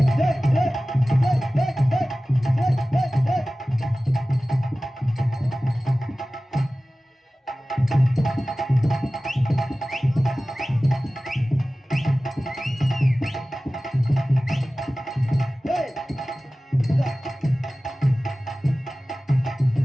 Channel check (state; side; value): normal; both; correlation 0.97